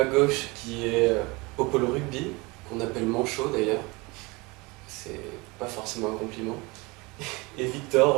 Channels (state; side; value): quieter; left; 25.3 dB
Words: gauche, qui est au pôle rugby, qu'on appelle manchot d'ailleurs. C'est pas forcément un compliment. Et